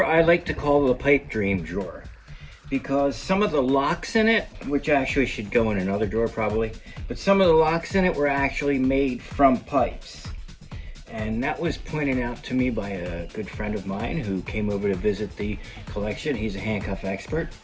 I like to call the pipe dream drawer because some of the locks in it, which actually should go in another drawer probably, but some of the locks in it were actually made from pipes. And that was pointed out to me by a good friend of mine who came over to visit the collection. He's a handcuff expert.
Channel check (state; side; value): identical; both; correlation 1.00